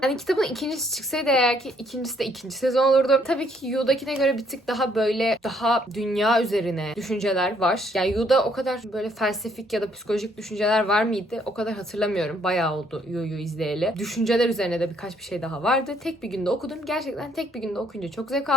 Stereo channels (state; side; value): normal; both; correlation 0.67